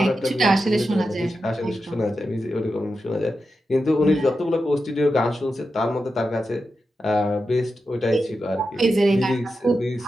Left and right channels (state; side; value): normal; both; correlation 0.89